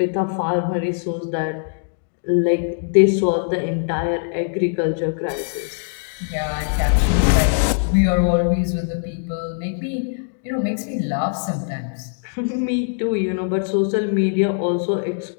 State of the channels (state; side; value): silent; right; digital silence